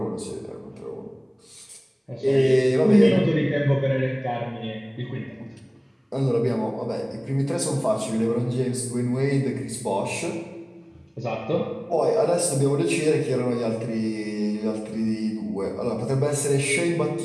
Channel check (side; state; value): both; identical; correlation 1.00